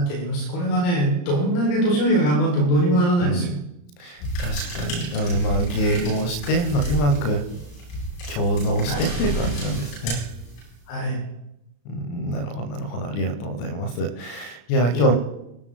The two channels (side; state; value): right; late; 34 ms